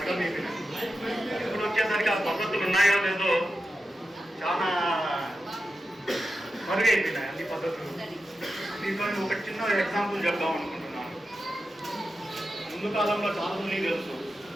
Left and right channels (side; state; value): both; normal; correlation 0.91